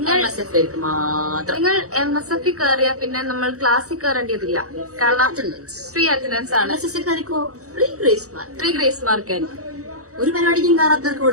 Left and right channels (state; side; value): late; left; 0.65 ms